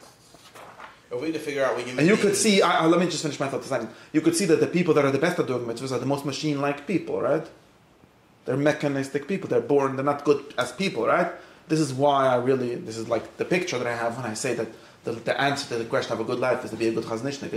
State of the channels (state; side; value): identical; both; correlation 1.00